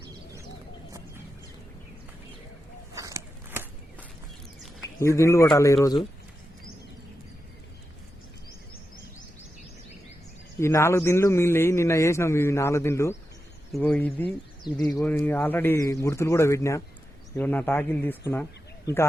ఈ దిండ్లు కొట్టాలి ఈరోజు. ఈ 4 దిండ్లు మిగిలినవి నిన్న వేసినాం. ఇవి 4 దిండ్లు. ఇగో ఇది ఇగో ఆల్రెడీ గుర్తులు కూడా పెట్టినా. ఇగో నా టాకీలు తీసుకున్నా. ఇంకా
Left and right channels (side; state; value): both; normal; correlation 0.89